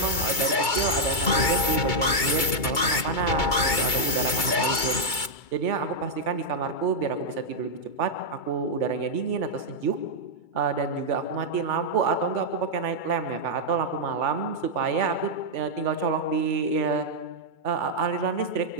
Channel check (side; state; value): right; late; 2.3 ms